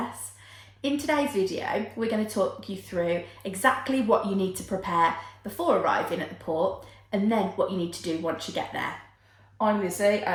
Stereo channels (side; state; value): both; identical; correlation 1.00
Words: In today's video, we're going to talk you through exactly what you need to prepare before arriving at the port and then what you need to do once you get there. I'm Lizzie